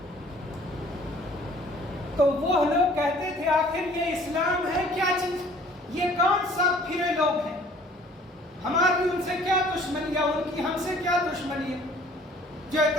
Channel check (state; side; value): normal; both; correlation 0.54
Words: تو وہ لوگ کہتے تھے آخر یہ اسلام ہے کیا چیز؟ یہ کون سا پھرے لوگ ہیں؟ ہماری ان سے کیا دشمنی ہے، ان کی ہم سے کیا دشمنی ہے جو